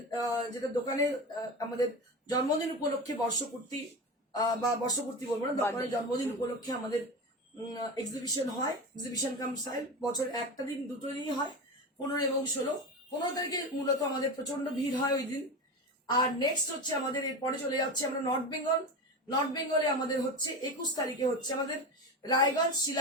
যেটা দোকানে আমাদের জন্মদিন উপলক্ষে বর্ষপূর্তি, বা বর্ষপূর্তি বলবো না, দোকানের জন্মদিন উপলক্ষে আমাদের এক্সিবিশন হয়। এক্সিবিশন কাম সাইল বছর একটা দিন, দুটো দিনই হয়, 15 এবং 16। 15 তারিখে মূলত আমাদের প্রচন্ড ভিড় হয় ওই দিন। আর নেক্সট হচ্ছে আমাদের এরপরে চলে যাচ্ছে আমরা নর্থ বেঙ্গল। নর্থ বেঙ্গলে আমাদের হচ্ছে 21 তারিখে হচ্ছে আমাদের রায়গঞ্জ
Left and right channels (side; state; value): both; normal; correlation 0.24